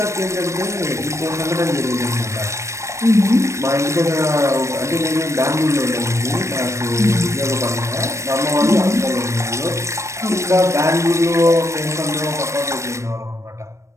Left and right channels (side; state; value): left; late; 0.14 ms